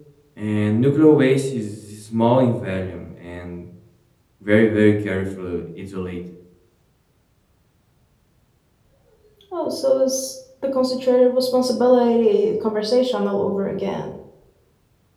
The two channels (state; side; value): identical; both; correlation 1.00